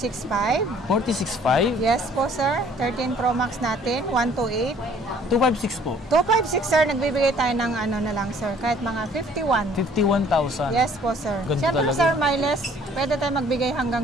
46.5? Yes po, sir. 13 Pro Max natin, 128. 256 po. 256, sir, nagbibigay tayo ng ano na lang, sir, kahit mga 51. 51,000. Yes po, sir. Ganda Siyempre, talaga. sir, may less. Pwede tayo magbigay hanggang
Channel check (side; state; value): both; normal; correlation 0.57